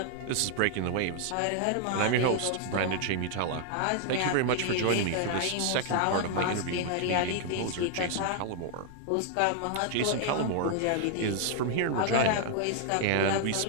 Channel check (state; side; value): different; both; correlation 0.00